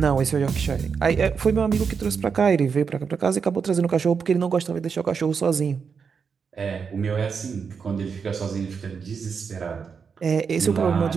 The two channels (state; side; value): quieter; left; 6.0 dB